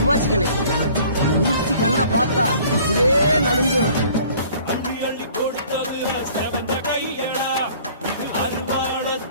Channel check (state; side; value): inverted; both; correlation -0.52